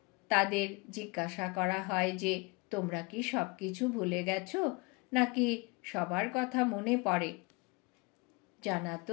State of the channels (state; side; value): quieter; right; 27.5 dB